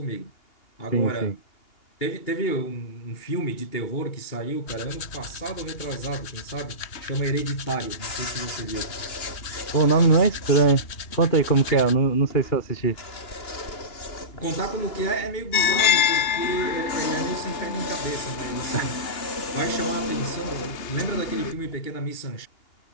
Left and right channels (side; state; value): right; late; 2.8 ms